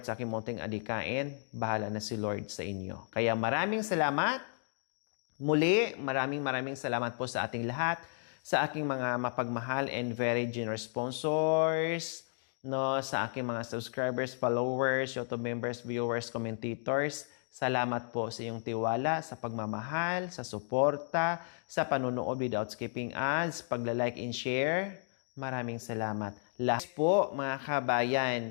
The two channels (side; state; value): right; silent; digital silence